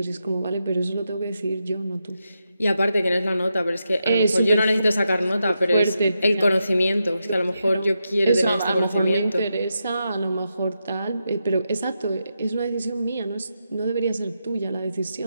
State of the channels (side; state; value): both; inverted; correlation -0.86